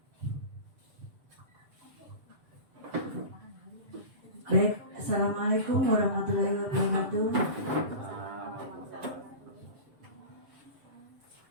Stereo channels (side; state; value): left; late; 7.3 ms